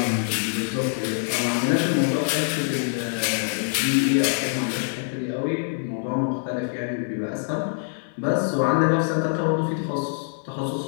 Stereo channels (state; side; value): silent; right; digital silence